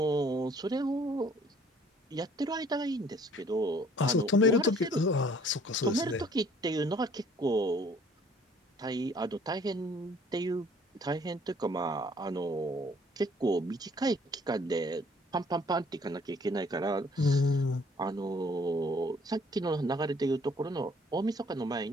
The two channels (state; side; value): normal; both; correlation 0.58